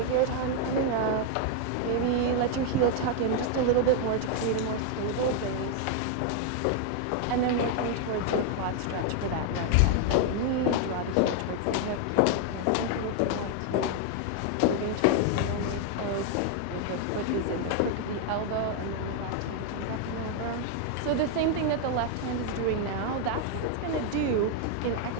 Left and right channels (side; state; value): both; different; correlation 0.00